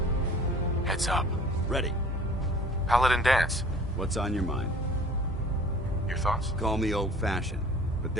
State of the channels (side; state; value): both; normal; correlation 0.48